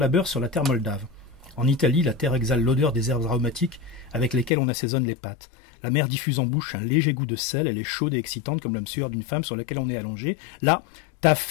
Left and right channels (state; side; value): drops out; right; at 4.5 s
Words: sur la terre moldave. En Italie, la terre exhale l'odeur des herbes aromatiques avec lesquelles on assaisonne les pâtes. La mer diffuse en bouche un léger goût de sel, elle est chaude et excitante comme l'âme sueur d'une femme sur laquelle on est allongé. Là, ta